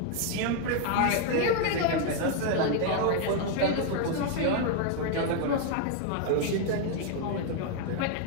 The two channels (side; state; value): both; different; correlation 0.00